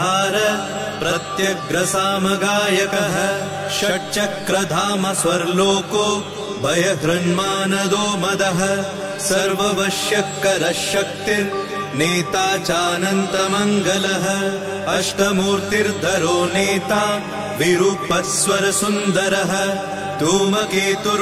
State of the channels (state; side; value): identical; both; correlation 1.00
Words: प्रत्यग्रसामगायकः षट्चक्रधाम स्वर्लोको भयहृन्मानदो मदः सर्ववश्यकरः शक्तिर्नेता चानन्तमङ्गलः अष्टमूर्तिर्धरो नेता विरूपस्वरसुन्दरः